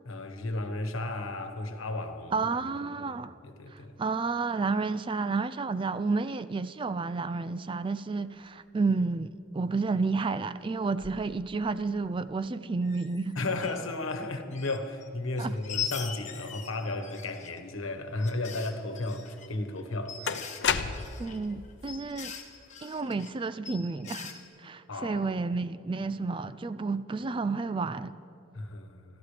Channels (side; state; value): both; normal; correlation 0.51